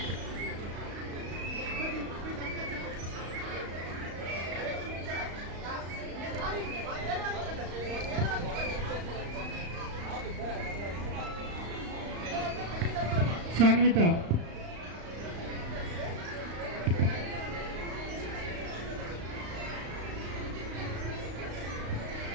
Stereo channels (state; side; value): late; left; 35 ms